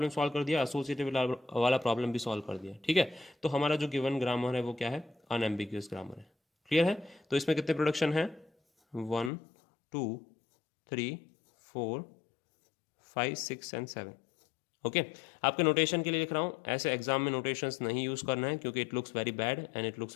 सॉल्व कर दिया, एसोसिएटिव वाला प्रॉब्लम भी सॉल्व कर दिया। ठीक है, तो हमारा जो गिवन ग्रामर है वो क्या है, अनएम्बिग्यूअस ग्रामर है। क्लियर है, तो इसमें कितने प्रोडक्शन है, 1 2 3 4 5 6 एंड 7। ओके, आपके नोटेशन के लिए लिख रहा हूँ, ऐसे एग्जाम में नोटेशंस नहीं यूज़ करना है क्योंकि it looks very bad and it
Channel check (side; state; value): right; drops out; at 9.3 s